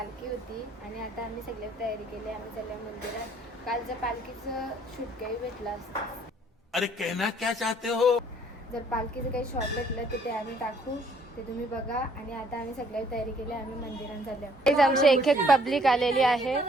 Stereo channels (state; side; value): normal; both; correlation 0.62